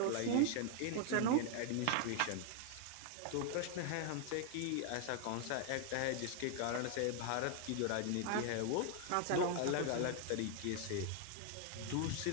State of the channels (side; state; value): both; different; correlation 0.00